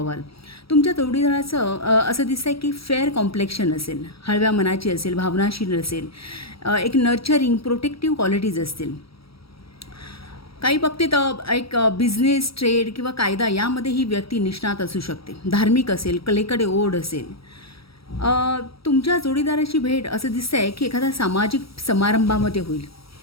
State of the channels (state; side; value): late; right; 0.76 ms